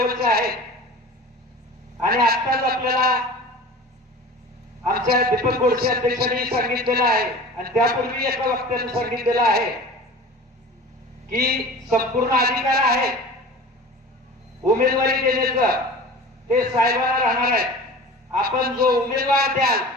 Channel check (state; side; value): normal; both; correlation 0.38